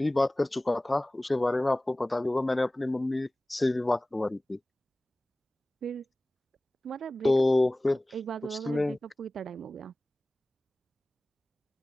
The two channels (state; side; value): normal; both; correlation 0.98